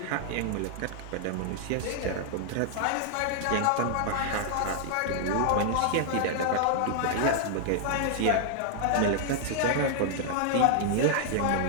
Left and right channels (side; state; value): both; different; correlation 0.00